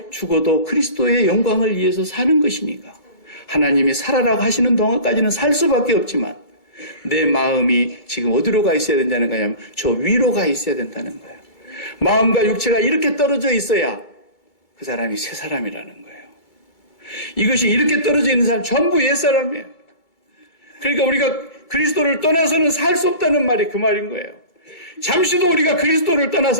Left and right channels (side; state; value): right; late; 2.3 ms